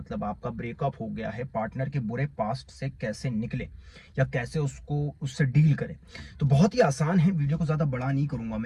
आपका ब्रेकअप हो गया है, पार्टनर के बुरे पास्ट से कैसे निकले या कैसे उससे डील करें। तो बहुत ही आसान है, वीडियो को ज्यादा बड़ा नहीं करूंगा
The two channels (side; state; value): both; identical; correlation 1.00